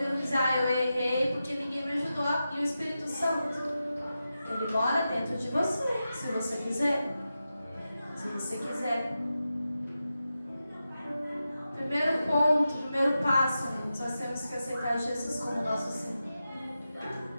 dizer, eu errei porque ninguém me ajudou. E o Espírito Santo, ele mora dentro de você, se você quiser. Se você quiser. Primeiro ponto, primeiro passo, nós temos que aceitar Jesus como nosso Senhor.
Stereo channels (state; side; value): inverted; both; correlation -0.91